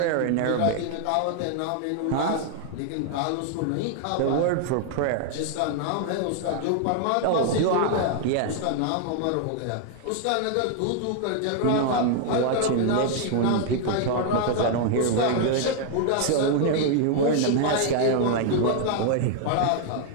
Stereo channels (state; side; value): different; both; correlation 0.00